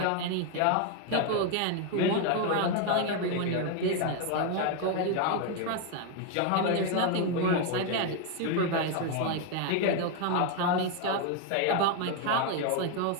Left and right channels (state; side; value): different; both; correlation 0.01